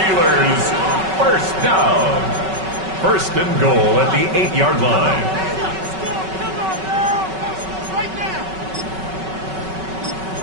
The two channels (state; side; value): late; left; 5.3 ms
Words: first down. 1st and goal at the 8-yard line.